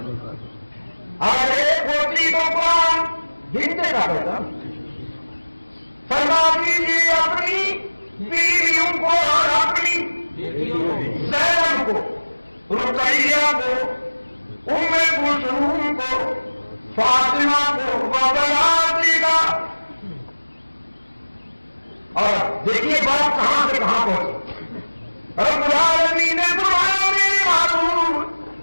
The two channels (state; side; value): inverted; both; correlation -1.00